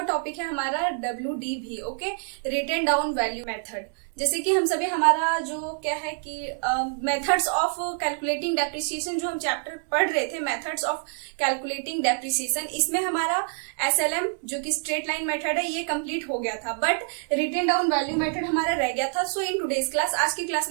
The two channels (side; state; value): left; silent; 61 dB below the other